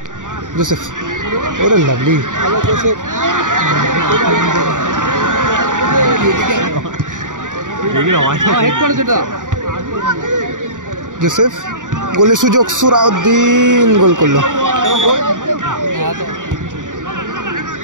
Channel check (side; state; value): left; late; 0.87 ms